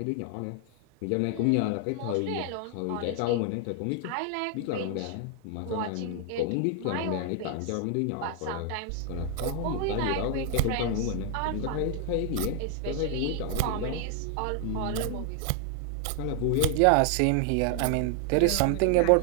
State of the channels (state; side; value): different; both; correlation 0.00